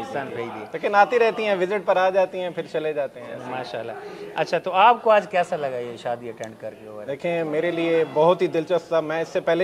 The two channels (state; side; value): identical; both; correlation 1.00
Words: दी। लेकिन आती रहती हैं, विजिट पर आ जाती हैं, फिर चले जाते हैं माशाल्लाह। अच्छा, तो आपको आज कैसा लगा ये शादी अटेंड करके? देखें, मेरे लिए बहुत ही दिलचस्प था। मैं इससे